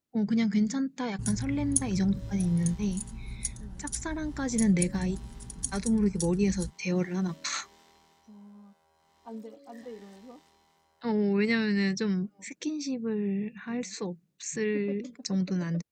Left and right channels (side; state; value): both; identical; correlation 1.00